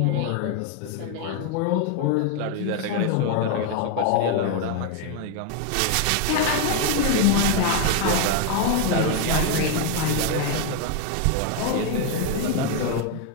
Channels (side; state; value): both; different; correlation 0.01